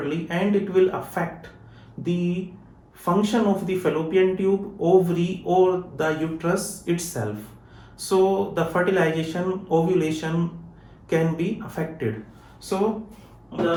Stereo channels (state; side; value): identical; both; correlation 1.00